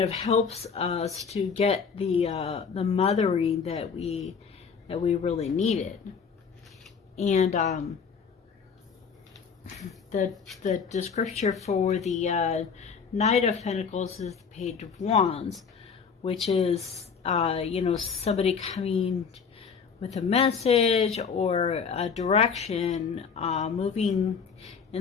helps us to get the mothering that we really needed. And the scripture for the Knight of Pentacles is the Page of Wands, which is somebody coming with a message or a direction, moving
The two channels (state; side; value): quieter; right; 6.1 dB